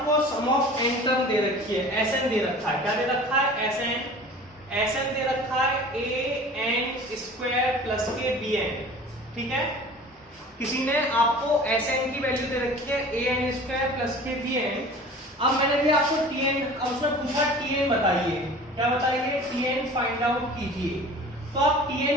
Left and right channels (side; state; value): both; normal; correlation 0.42